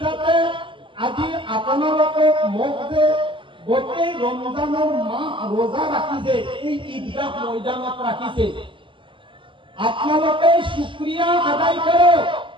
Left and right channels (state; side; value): late; left; 0.25 ms